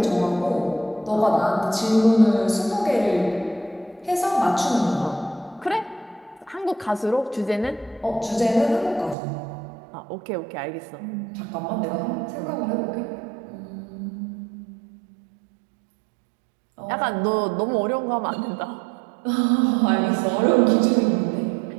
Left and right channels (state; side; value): drops out; left; at 9.2 s